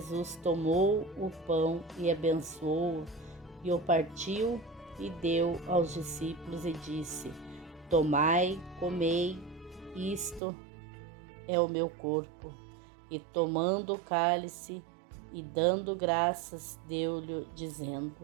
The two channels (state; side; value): drops out; left; at 10.4 s